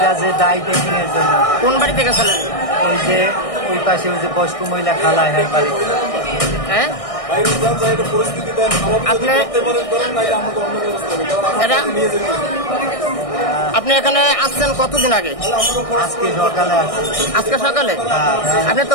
কাজে দাই ট্রেনিং এর জন্য। কোন বাড়ি থেকে গেছিলেন? ওই যে ওই পাশে ওই যে বয়স্ক মহিলা খালা হ্যাঁ বাড়ি। হ্যাঁ আপনি এখানে আসছেন কতদিন আগে? আজকে সকালে আসছি। আজকে সকালে? আপনি তো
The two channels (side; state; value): right; late; 1.6 ms